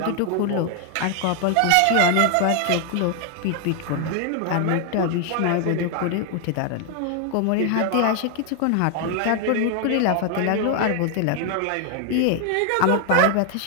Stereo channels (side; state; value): both; different; correlation 0.00